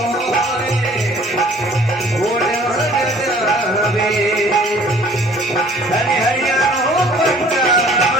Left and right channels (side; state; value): both; normal; correlation 0.53